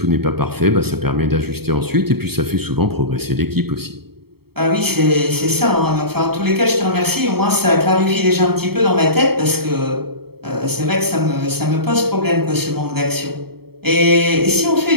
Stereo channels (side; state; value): left; late; 0.96 ms